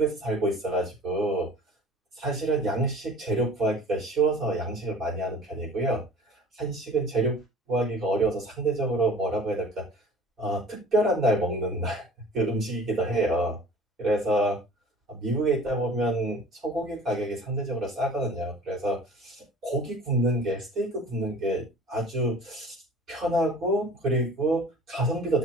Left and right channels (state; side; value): normal; both; correlation 0.45